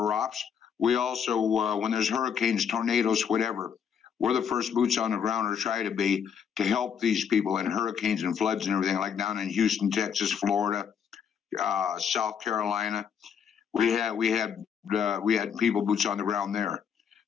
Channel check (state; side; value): quieter; right; 7.6 dB